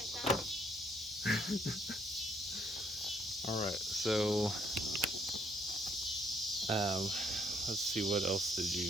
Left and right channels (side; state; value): both; normal; correlation 0.68